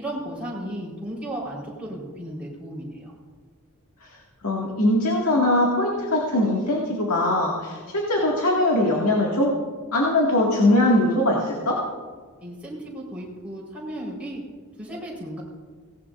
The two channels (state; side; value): normal; both; correlation 0.20